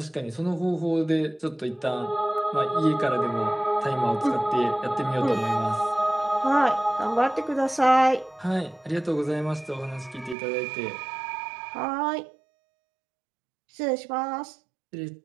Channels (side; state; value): left; drops out; at 10.4 s